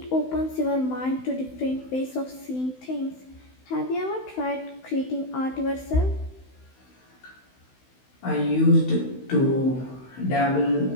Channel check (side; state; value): right; late; 16 ms